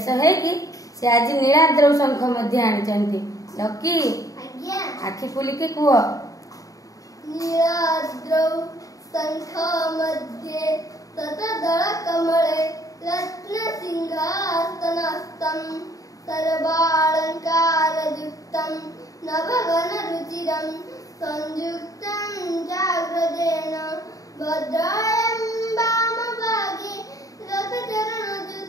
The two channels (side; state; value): right; late; 0.17 ms